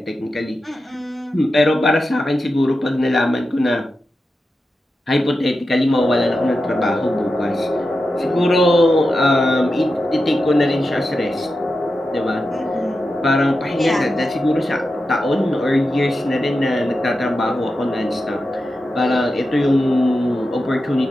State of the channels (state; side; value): normal; both; correlation 0.90